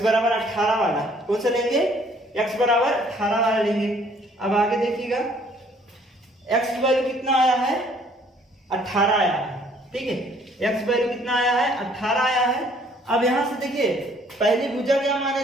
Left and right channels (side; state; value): both; normal; correlation 0.60